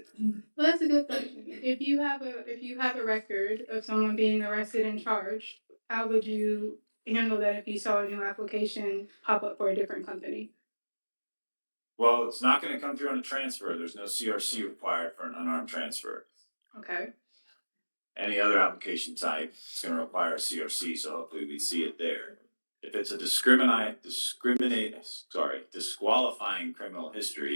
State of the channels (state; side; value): inverted; both; correlation -1.00